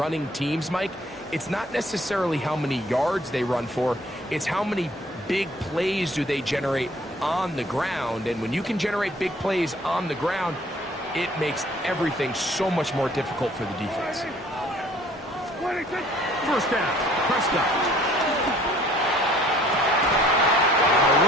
teams, Mike, it's not necessarily how many yards they run for, it's how many big plays do they generate on the ground. And when you can generate big plays on the ground, it makes everything so much more difficult for the defense. 26. First down, Prescott.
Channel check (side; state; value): both; normal; correlation 0.57